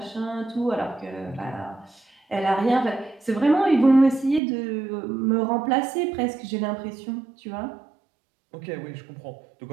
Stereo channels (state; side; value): drops out; left; at 4.4 s